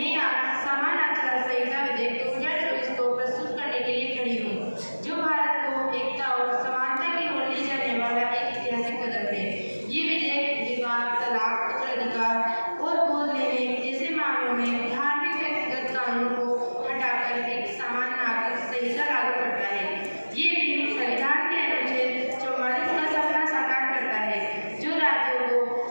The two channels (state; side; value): inverted; both; correlation -1.00